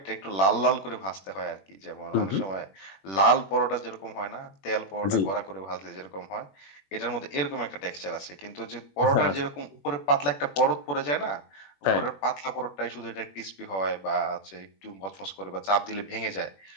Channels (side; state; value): right; late; 21 ms